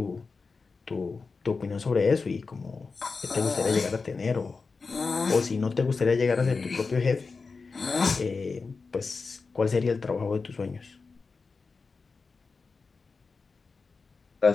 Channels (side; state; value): right; quieter; 4.5 dB